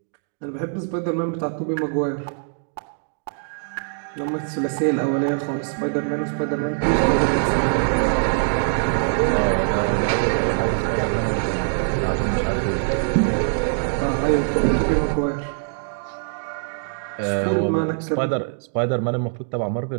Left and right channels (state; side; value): silent; left; digital silence